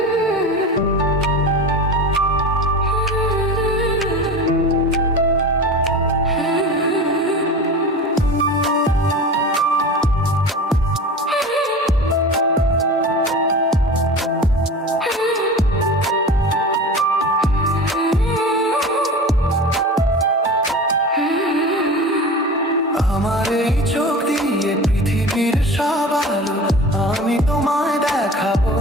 এই চোখ দিয়ে পৃথিবীর সব আলো আমি তোমায় দেখাবো।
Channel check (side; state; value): both; normal; correlation 0.33